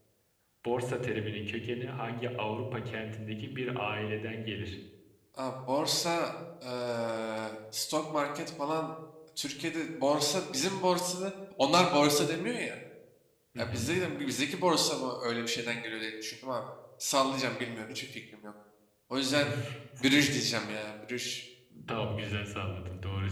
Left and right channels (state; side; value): identical; both; correlation 1.00